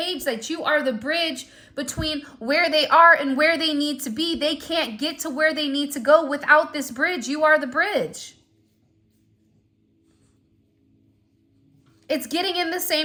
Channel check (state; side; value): identical; both; correlation 1.00